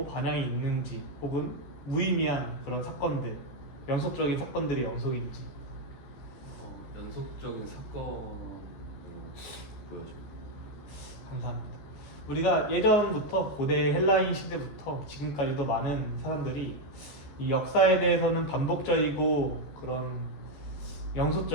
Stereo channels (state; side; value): late; right; 14 ms